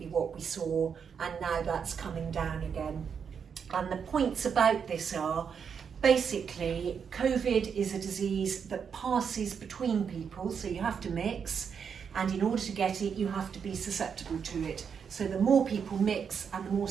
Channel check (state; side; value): quieter; left; 6.8 dB